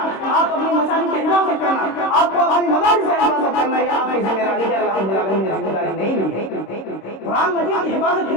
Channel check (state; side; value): late; right; 26 ms